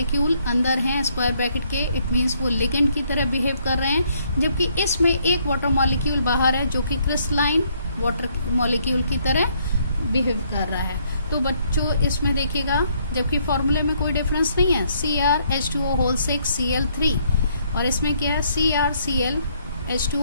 अंदर हैं स्क्वायर ब्रैकेट के, इट मीन्स वो लिगेंड की तरह बिहेव कर रहे हैं, जबकि इसमें एक वाटर मॉलिक्यूल बाहर है जो कि क्रिस्टलाइन वाटर मॉलिक्यूल की तरह बिहेव कर रहा है। तो बच्चों इसमें देखिएगा, जबकि फॉर्मूले में कोई डिफरेंस नहीं है, CrH2O6 Cl3, और इसमें क्या है, CrCl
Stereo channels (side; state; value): both; inverted; correlation -0.69